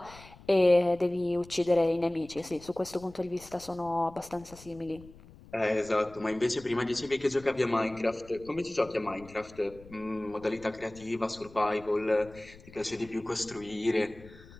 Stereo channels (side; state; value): left; noise; rumble, 21 dB below the sound